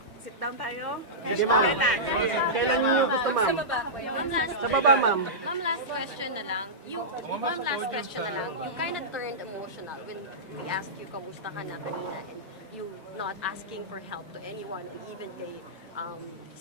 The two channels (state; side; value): normal; both; correlation -0.14